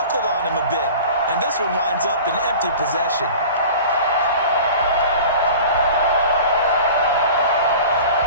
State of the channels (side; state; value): both; inverted; correlation -0.40